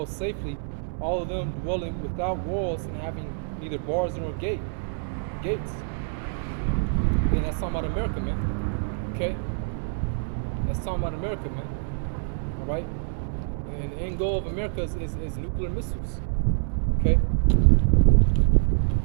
safely, all of them dwelling without walls and having neither bars nor gates. And that's talking about America, man. Okay? That's talking about America, man. All right? And the end goal of America is nuclear missiles. Okay?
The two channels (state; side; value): silent; left; 61 dB below the other